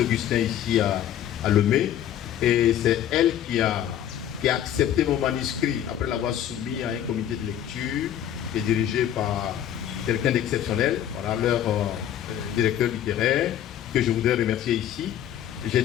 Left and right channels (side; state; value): right; quieter; 10.7 dB